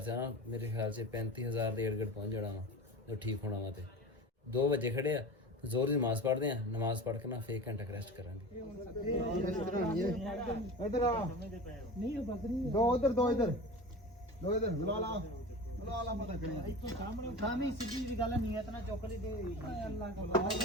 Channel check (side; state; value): both; normal; correlation 0.32